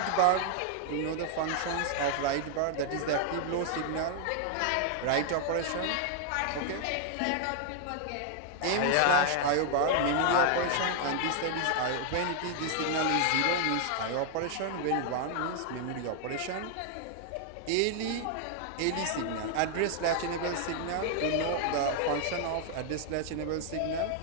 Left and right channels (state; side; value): different; both; correlation 0.00